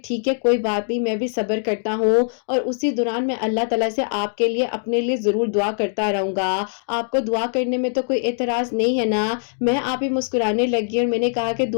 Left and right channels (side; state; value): right; silent; digital silence